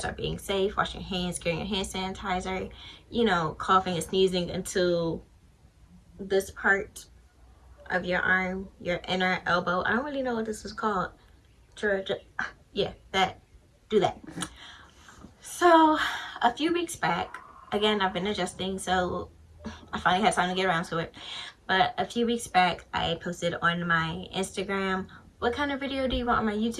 are being safe, washing your hands, carrying your hand sanitizer, you know, coughing and sneezing into this part of your arm, your inner elbow. I don't really know what this is called. Yeah, that. Do that. So a few weeks back, again, I've been adjusting, so I finally had time to get around to it. But a few weeks back, I posted on my Instagram, what kind of video do you want on my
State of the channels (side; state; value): both; identical; correlation 1.00